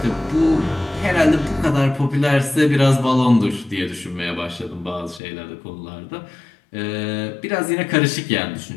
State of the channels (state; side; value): drops out; right; at 5.2 s